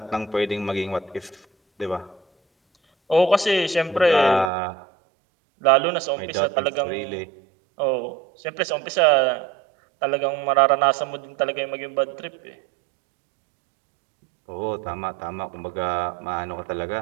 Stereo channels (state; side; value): drops out; left; at 4.5 s